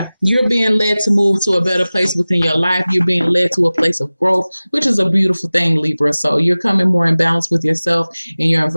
you're being led to move to a better place within your life. You're being led to a place of growth, which is a beautiful thing, Libra. So you're coming more in balance with yourself, and your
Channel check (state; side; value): inverted; both; correlation -0.98